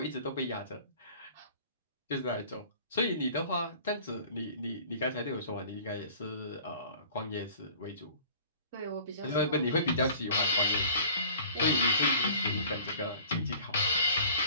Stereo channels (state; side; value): inverted; both; correlation -0.49